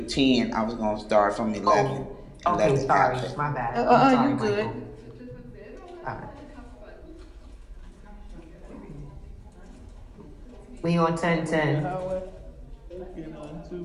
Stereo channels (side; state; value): both; identical; correlation 1.00